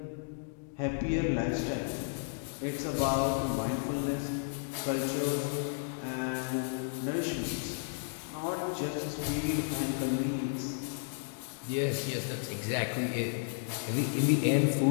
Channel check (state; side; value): silent; right; digital silence